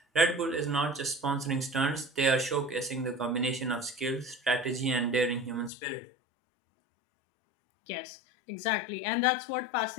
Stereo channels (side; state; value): right; drops out; at 5.7 s